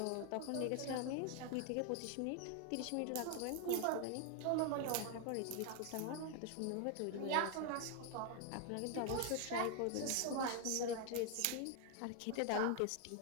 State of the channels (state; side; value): different; both; correlation 0.00